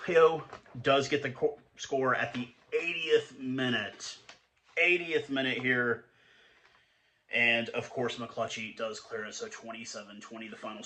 does get the score at the 80th minute. 80th minute here. And, of course, McClutchy does clear it, so 27-20 the final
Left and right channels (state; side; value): identical; both; correlation 1.00